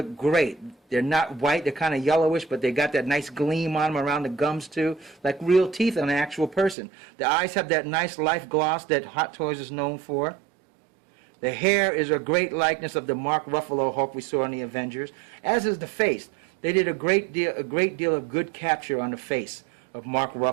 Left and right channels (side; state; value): left; drops out; at 6.8 s